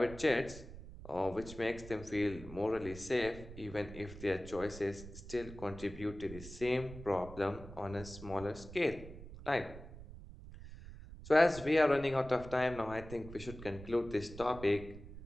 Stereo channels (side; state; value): right; noise; rumble, 14 dB below the sound